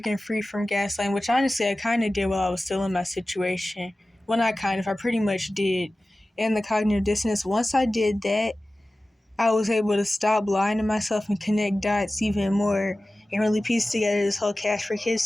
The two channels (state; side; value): normal; both; correlation 0.96